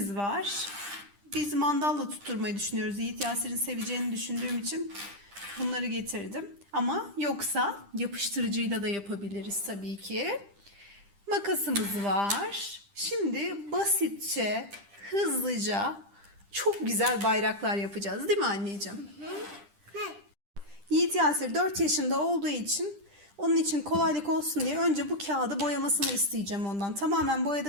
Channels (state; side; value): late; left; 10 ms